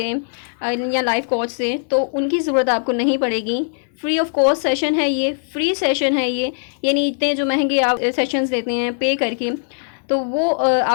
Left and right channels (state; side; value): silent; right; 66 dB below the other